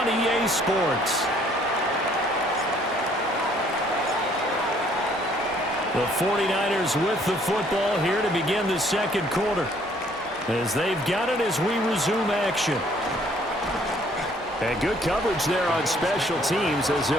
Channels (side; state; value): both; normal; correlation 0.62